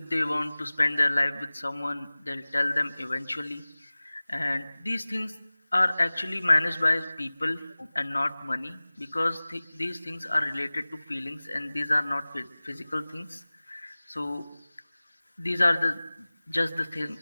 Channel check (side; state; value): both; inverted; correlation -0.99